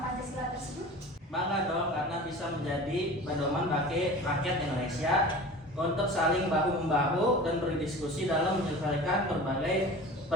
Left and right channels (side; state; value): both; normal; correlation 0.38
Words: Pancasila tersebut? Bangga dong karena bisa menjadi pedoman bagi rakyat Indonesia untuk saling bahu-membahu dan berdiskusi dalam menyelesaikan berbagai